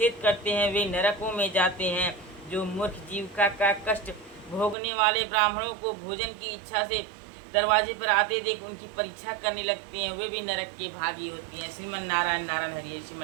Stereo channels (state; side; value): drops out; left; at 4.8 s